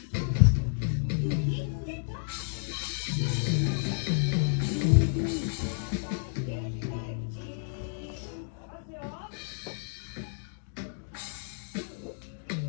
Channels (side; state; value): right; silent; digital silence